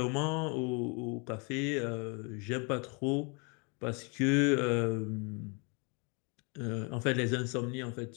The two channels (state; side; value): quieter; right; 33.1 dB